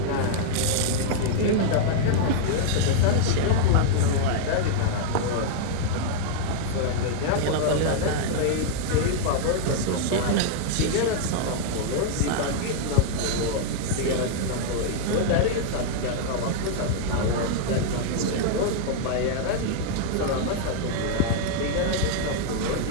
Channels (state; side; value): different; both; correlation -0.01